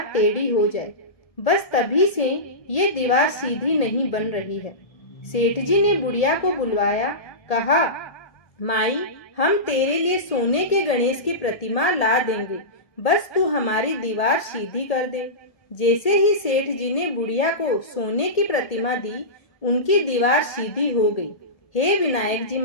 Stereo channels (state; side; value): late; right; 1.8 ms